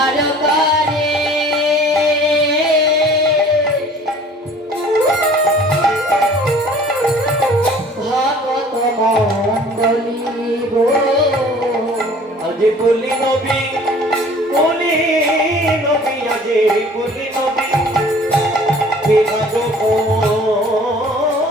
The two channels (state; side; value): normal; both; correlation 0.50